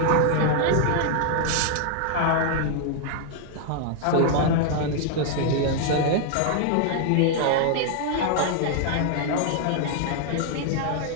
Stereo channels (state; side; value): different; both; correlation 0.00